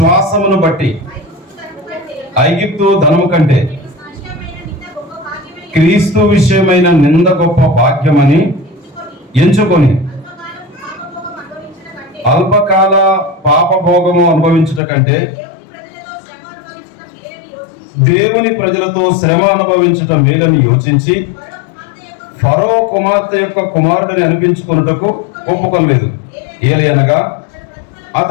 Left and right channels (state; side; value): drops out; right; at 14.8 s